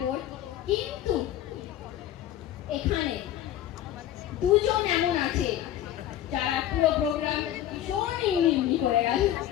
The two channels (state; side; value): quieter; right; 12.1 dB